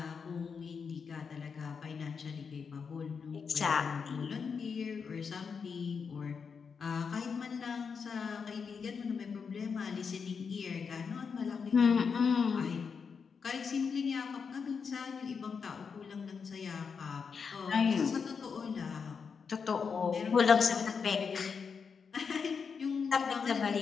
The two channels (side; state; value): right; quieter; 5.9 dB